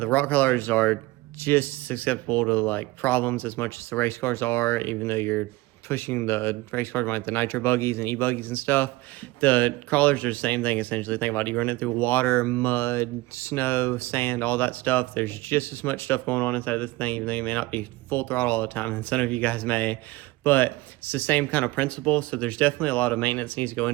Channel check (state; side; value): quieter; left; 20.1 dB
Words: rock crawlers are just susceptible to like problems as much as the race cars are, even though you're pushing the race cars like the nitro buggies and e-buggies and stuff. The crawlers are the same thing essentially. Think about it, you run it through water, mud, snow, sand, all that stuff. There's just as much stuff going on inside this thing, even though you may not be full throttle all the time, and some of you guys may. But it's the same kind of principle. So there's definitely a lot of maintenance needs to go